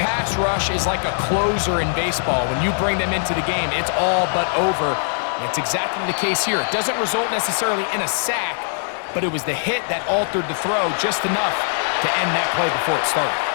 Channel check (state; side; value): silent; right; digital silence